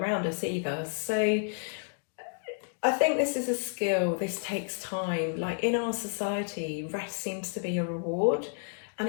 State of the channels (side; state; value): right; silent; 57 dB below the other